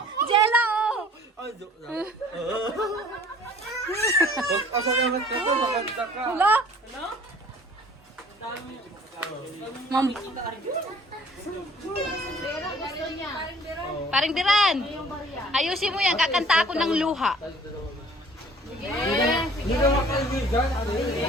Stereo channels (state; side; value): normal; both; correlation 0.52